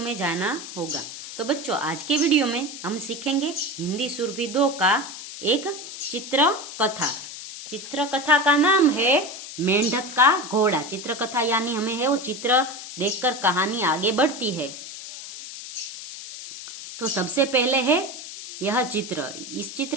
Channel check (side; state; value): left; noise; hiss, 11 dB below the sound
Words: जाना होगा। तो बच्चों, आज के वीडियो में हम सीखेंगे हिंदी सुरभि 2 का एक चित्र कथा। चित्र कथा का नाम है मेंढक का घोड़ा। चित्र कथा यानी हमें है वो चित्र देखकर कहानी आगे बढ़ती है। तो सबसे पहले है यह चित्र। इस